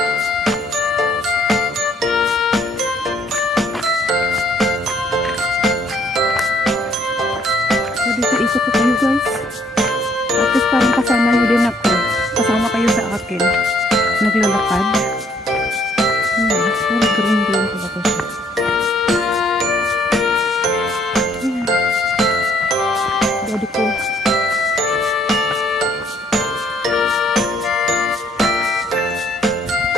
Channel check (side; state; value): both; normal; correlation 0.65